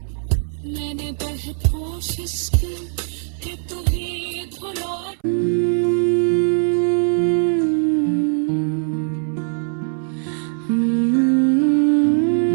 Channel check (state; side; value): silent; left; 65 dB below the other